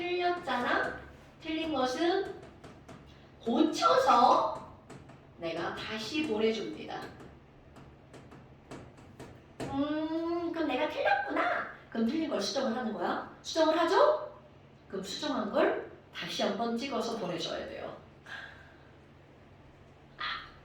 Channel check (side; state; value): both; identical; correlation 1.00